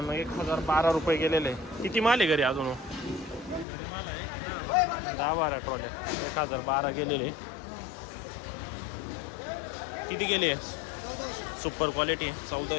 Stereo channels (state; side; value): drops out; right; at 3.7 s